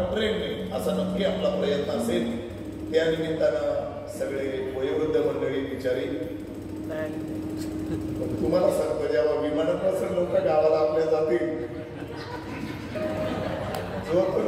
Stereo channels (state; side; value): identical; both; correlation 1.00